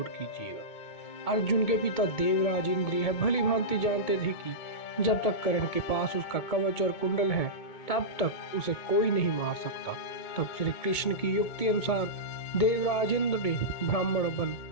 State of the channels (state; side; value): late; right; 2.2 ms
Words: कीजिएगा। अर्जुन के पिता देवराज इंद्र यह भली भांति जानते थे कि जब तक कर्ण के पास उसका कवच और कुंडल है तब तक उसे कोई नहीं मार सकता। तब श्री कृष्ण की युक्ति अनुसार देवराज इंद्र ने ब्राह्मण बन